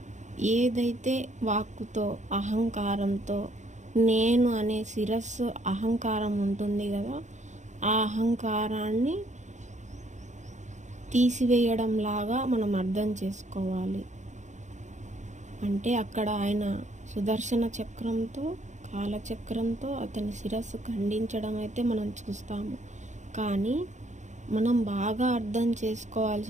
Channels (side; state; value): left; late; 0.35 ms